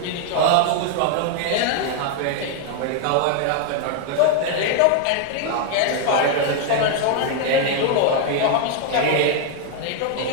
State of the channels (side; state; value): both; different; correlation 0.00